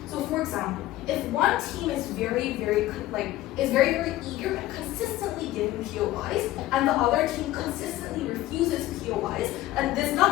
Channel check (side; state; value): right; quieter; 15.6 dB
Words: So for example, if one team is very eager and consistently giving POIs, and the other team consistently refuses POIs, and this does